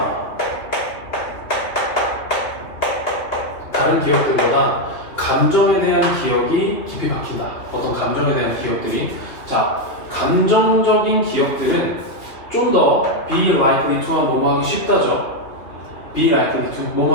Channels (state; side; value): late; right; 3.0 ms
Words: 다른 기억들보다 감정에 대한 기억이 깊이 박힌다. 어떤 감정에 대한 기억들이 자, 감정적인 기억들은 좀 더 be likely to와 뭐뭐 하기 쉽다죠. be likely to